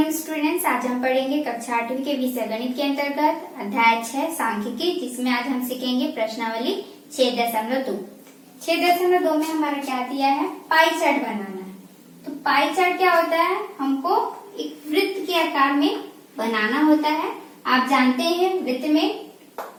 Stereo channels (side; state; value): both; identical; correlation 1.00